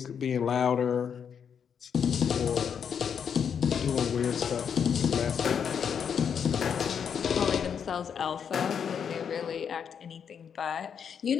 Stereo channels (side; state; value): right; quieter; 7.5 dB